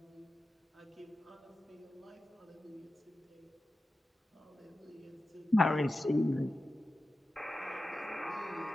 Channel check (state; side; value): normal; both; correlation 0.93